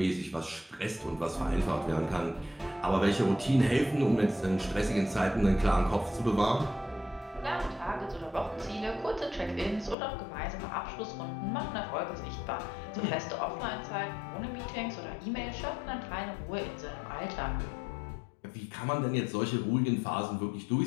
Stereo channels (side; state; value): right; drops out; at 10.0 s